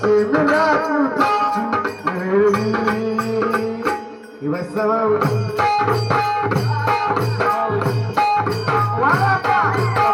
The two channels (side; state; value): both; identical; correlation 1.00